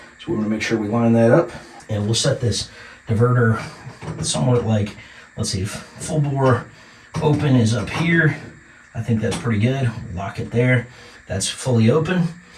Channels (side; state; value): both; identical; correlation 1.00